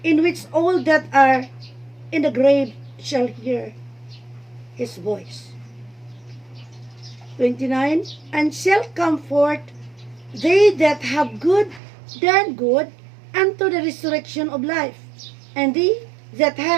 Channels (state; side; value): drops out; left; at 11.8 s